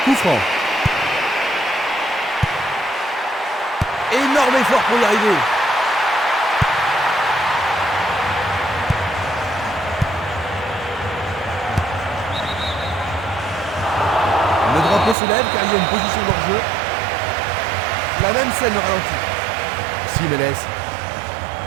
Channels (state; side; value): drops out; left; at 15.2 s